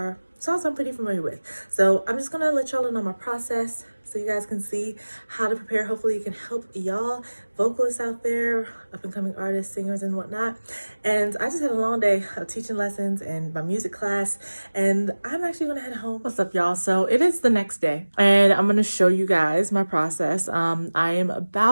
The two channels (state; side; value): inverted; both; correlation -1.00